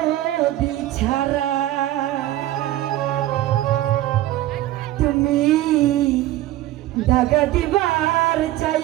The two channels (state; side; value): quieter; left; 14.8 dB